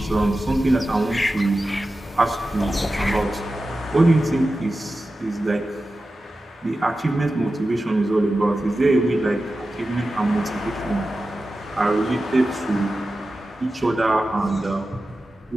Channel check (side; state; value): both; normal; correlation 0.93